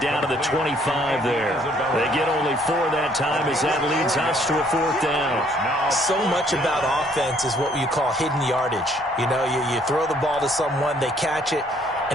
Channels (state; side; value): normal; both; correlation 0.64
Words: down to the 25 there. They get only 4 that time as that leads us to a 4th down. So much about offense is what you call hidden yardage. You know, you throw the ball to someone, they catch it,